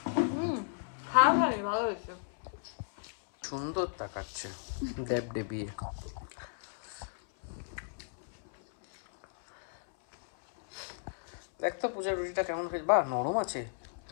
খা ভাই, ভালো হয়েছে। সুন্দর তাকাচ্ছে দেব দেবিয়ে। দেখ তো পূজার রুটিটা কেমন হয়েছে, বা নরম আছে।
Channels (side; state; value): right; silent; 55 dB below the other